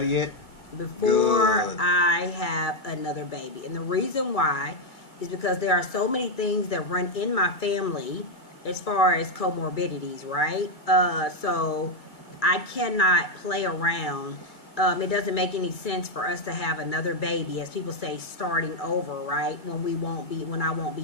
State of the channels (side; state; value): right; late; 2.0 ms